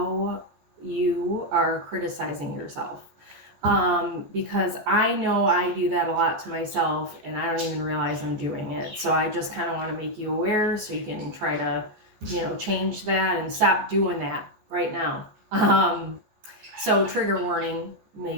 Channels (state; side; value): late; left; 14 ms